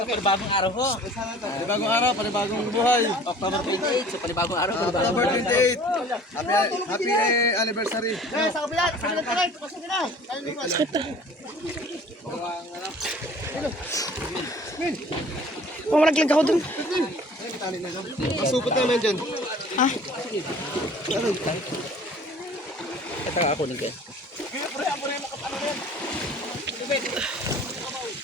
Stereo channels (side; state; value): both; normal; correlation 0.48